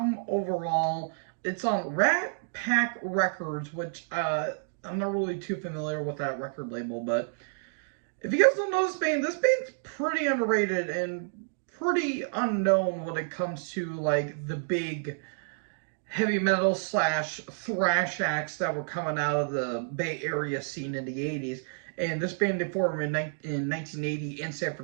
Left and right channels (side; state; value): left; silent; digital silence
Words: overall. It's on Rat Pack Records, which I'm not really too familiar with that record label, but if you guys don't know this band's pretty underrated and pretty unknown when it comes to like the big heavy metal slash thrash acts that were coming out of the Bay Area scene in the 80s. And this band they formed in 1980 in San